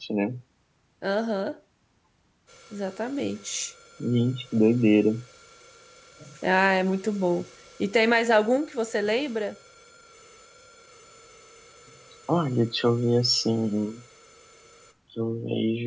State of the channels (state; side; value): identical; both; correlation 1.00